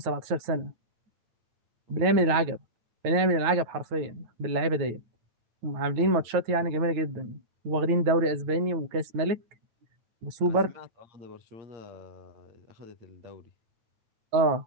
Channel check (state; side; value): late; left; 9.3 ms